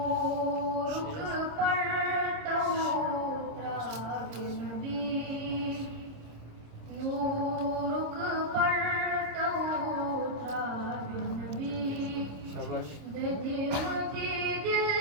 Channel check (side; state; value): left; late; 26 ms